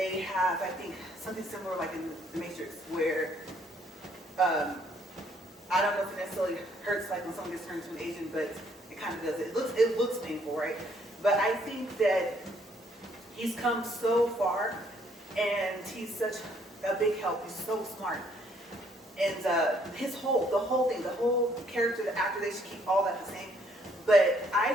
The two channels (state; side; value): normal; both; correlation 0.67